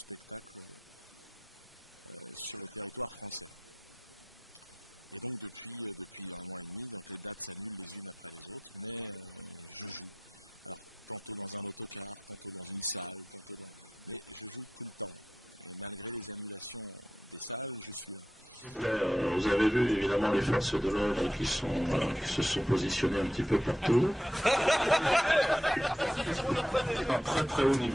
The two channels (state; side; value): normal; both; correlation 0.85